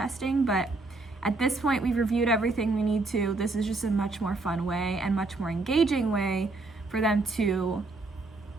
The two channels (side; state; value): left; quieter; 3.3 dB